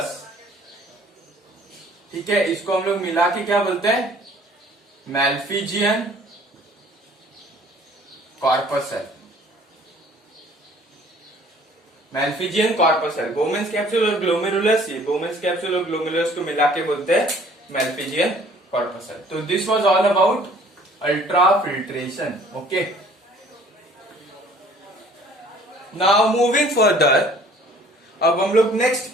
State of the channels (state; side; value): normal; both; correlation 0.54